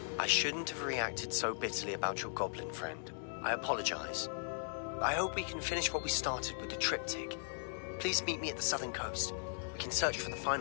I shouldn't have reacted so bitterly about your goblin friend. I apologize. I hope we can finish what we started with the triptych. Please meet me at the southern coast. We can search for the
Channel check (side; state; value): right; silent; digital silence